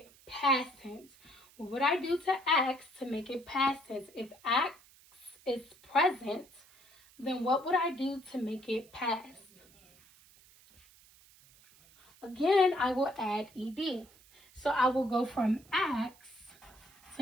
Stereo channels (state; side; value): noise; right; hiss, 26 dB below the sound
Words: past tense? What would I do to acts to make it past tense? If acts is present, then what would I do to make it past? Again, I will add ed. So I will go from acts